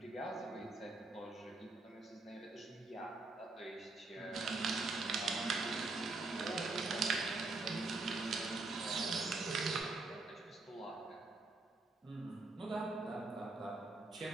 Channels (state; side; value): quieter; left; 3.3 dB